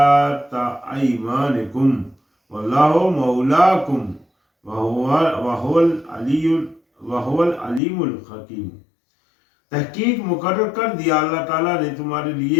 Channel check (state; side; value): drops out; right; at 7.8 s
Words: ایمانکم واللہ مولاکم وہو العلیم الحکیم۔ تحقیق مقرر کر دیا اللہ تعالیٰ نے تمہارے